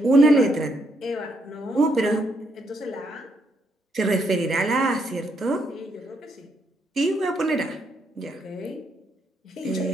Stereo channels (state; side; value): normal; both; correlation 0.76